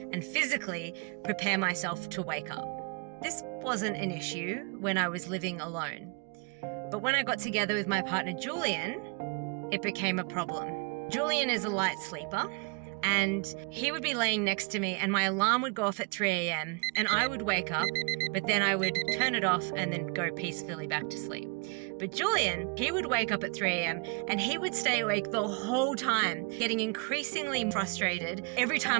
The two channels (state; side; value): quieter; left; 31.7 dB